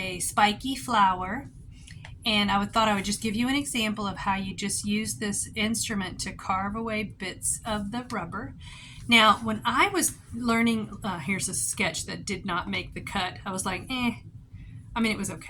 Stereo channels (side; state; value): both; identical; correlation 1.00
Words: spiky flower, and I thought I would just give you an example of how you just use this instrument to carve away bits of the rubber. Now, when I was learning, here's a sketch that did not make the cut. I was like, it was